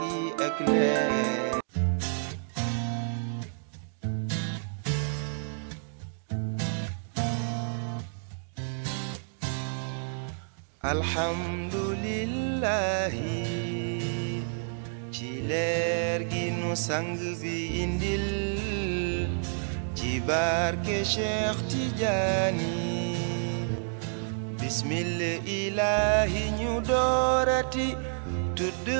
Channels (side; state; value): left; silent; digital silence